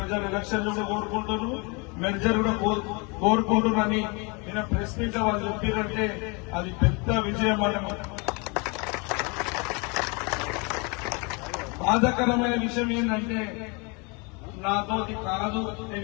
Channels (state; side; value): quieter; right; 30.7 dB